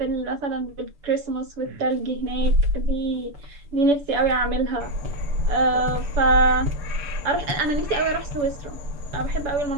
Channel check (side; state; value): left; late; 7.0 ms